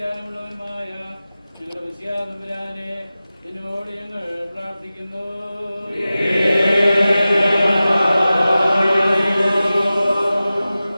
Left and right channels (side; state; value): both; inverted; correlation -0.95